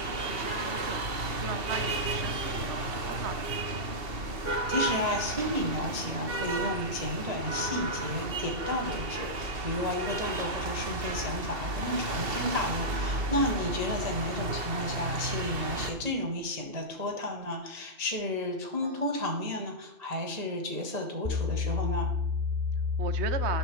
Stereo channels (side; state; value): left; late; 2.7 ms